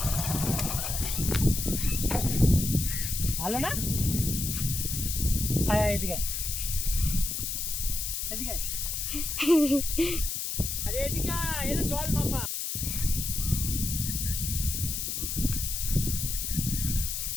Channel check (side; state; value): left; noise; hiss, 2 dB below the sound